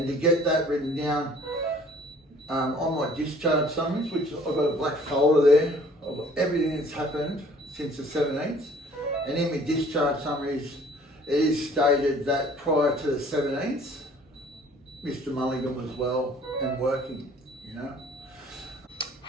to get that written down on my discharge summaries, which I've got a black folder there of everything that's happened since the 17th, and in my discharge summaries it is stated that prior to the 17th, Mr. Mulligan was well and working, you know.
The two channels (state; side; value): normal; both; correlation 0.54